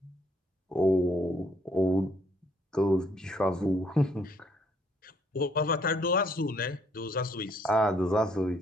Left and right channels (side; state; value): both; normal; correlation 0.67